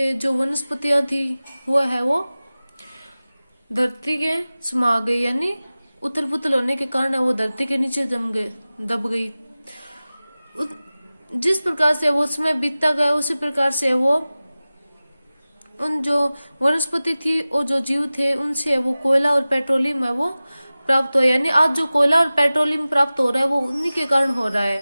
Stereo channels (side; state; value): both; inverted; correlation -0.97